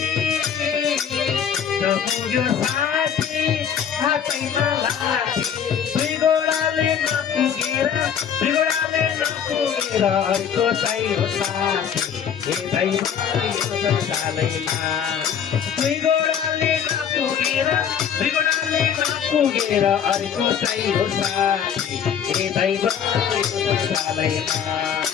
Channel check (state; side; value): quieter; right; 8.1 dB